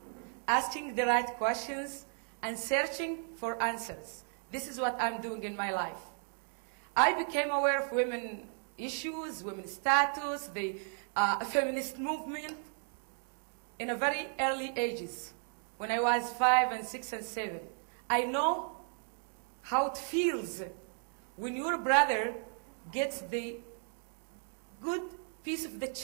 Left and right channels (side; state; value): left; silent; 55 dB below the other